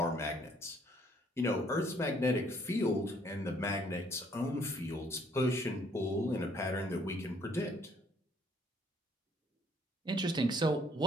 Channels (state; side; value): normal; both; correlation 0.64